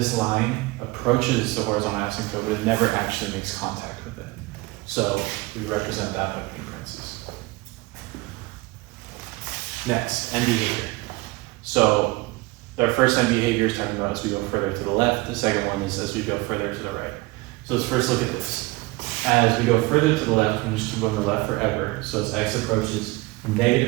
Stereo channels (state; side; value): quieter; left; 22.3 dB